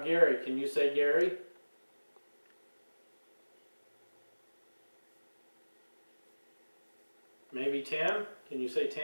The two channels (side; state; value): both; inverted; correlation -1.00